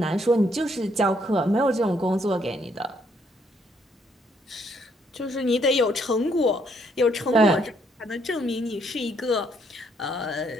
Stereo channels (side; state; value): both; normal; correlation 0.70